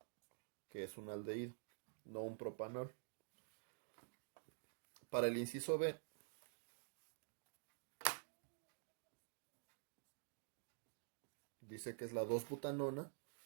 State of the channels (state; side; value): silent; left; digital silence